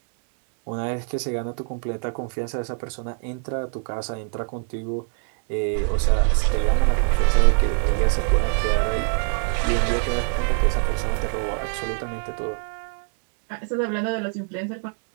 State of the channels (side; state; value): left; silent; 56 dB below the other